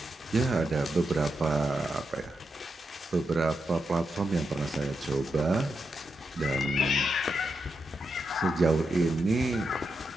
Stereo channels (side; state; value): both; normal; correlation 0.85